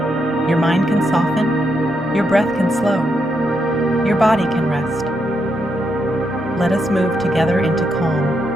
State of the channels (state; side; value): normal; both; correlation 0.81